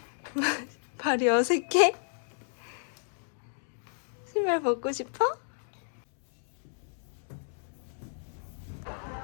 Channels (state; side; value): silent; right; digital silence